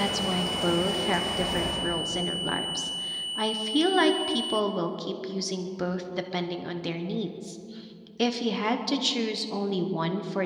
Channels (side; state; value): both; identical; correlation 1.00